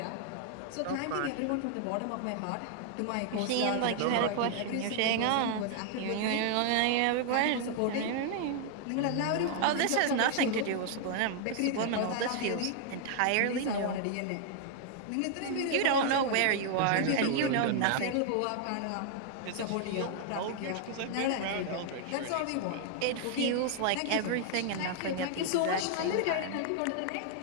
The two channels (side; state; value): both; different; correlation 0.00